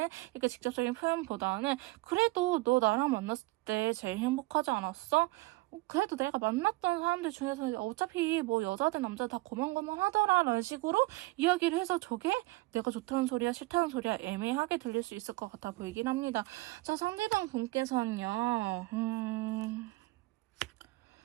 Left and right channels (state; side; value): quieter; left; 22.0 dB